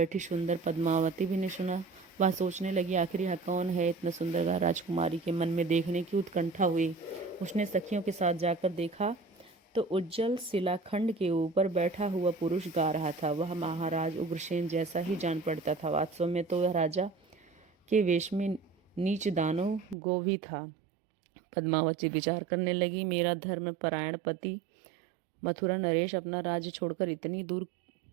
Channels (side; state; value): left; drops out; at 20.0 s